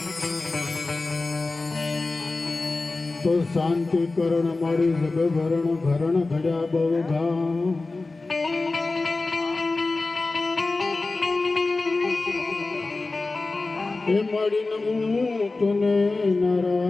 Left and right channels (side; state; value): right; quieter; 3.4 dB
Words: તો શાંતિ કરણ મારી જગભરણ ઘરણ ઘડ્યા બહુ ઘા એ મારી નમું તને